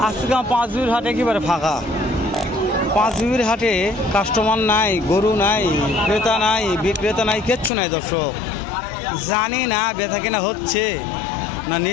আজকে পাঁচবিবির হাটে একেবারে ফাঁকা। পাঁচবিবির হাটে কাস্টমার নাই, গরু নাই, ক্রেতা নাই, বিক্রেতা নাই, কিচ্ছু নাই। দর্শক জানি না বেচা কিনা হচ্ছে না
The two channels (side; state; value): right; drops out; at 7.7 s